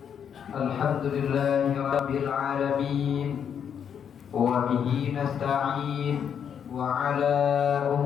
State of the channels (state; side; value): quieter; right; 8.0 dB